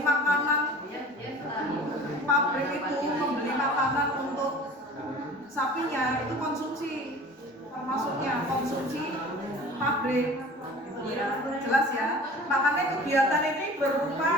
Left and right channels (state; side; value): normal; both; correlation 0.43